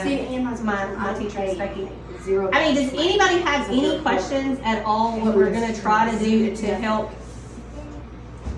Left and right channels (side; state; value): both; identical; correlation 1.00